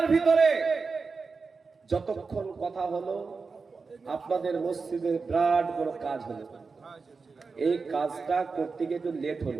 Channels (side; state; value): left; quieter; 4.6 dB